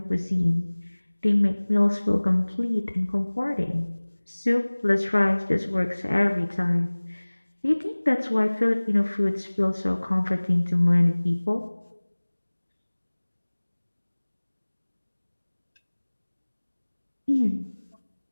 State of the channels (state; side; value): inverted; both; correlation -1.00